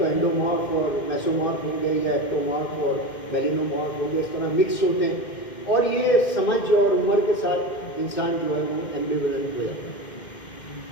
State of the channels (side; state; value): right; late; 2.1 ms